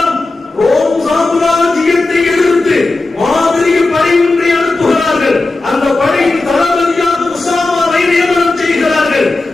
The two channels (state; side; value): quieter; right; 3.2 dB